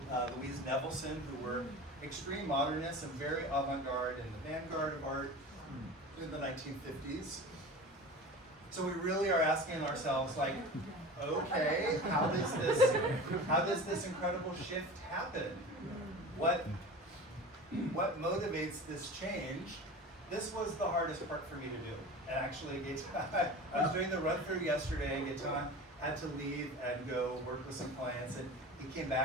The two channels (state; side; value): normal; both; correlation 0.34